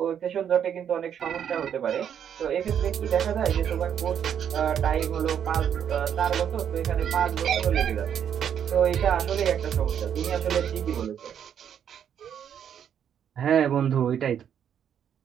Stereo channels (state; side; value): quieter; left; 8.8 dB